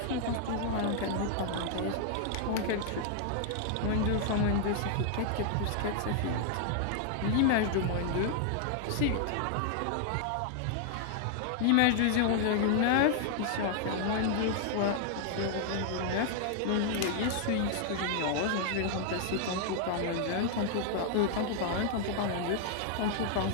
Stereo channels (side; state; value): both; different; correlation 0.00